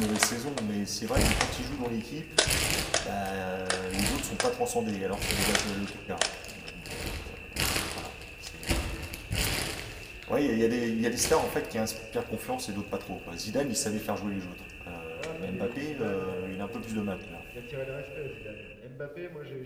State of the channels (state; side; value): identical; both; correlation 1.00